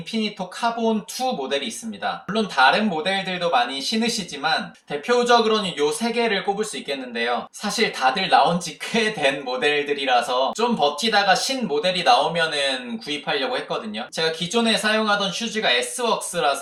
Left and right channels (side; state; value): both; identical; correlation 1.00